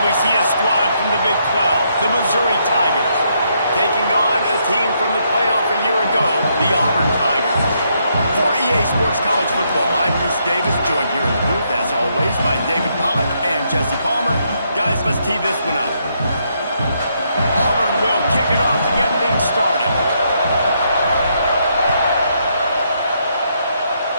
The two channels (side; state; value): both; inverted; correlation -0.75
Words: we see a squad from the Big 12, the Missouri Tigers, taking on a team from the playoff a year ago, the Auburn Tigers. For EA Sports College Football, I'm Reese Davis, joined here in the booth, as always, by David Pollack and Jesse Palmer. Guys, let's tee this one up. Auburn will kick it off to get things started.